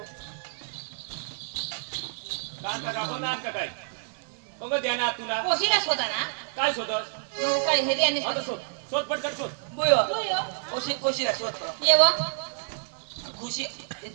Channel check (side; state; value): left; silent; digital silence